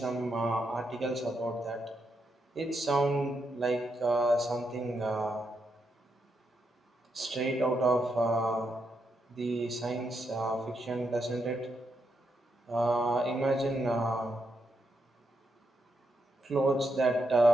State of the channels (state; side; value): normal; both; correlation 0.82